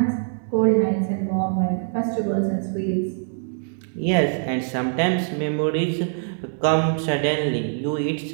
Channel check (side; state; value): left; silent; digital silence